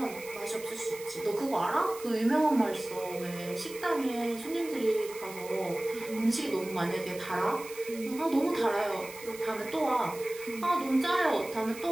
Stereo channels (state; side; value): noise; right; hiss, 15 dB below the sound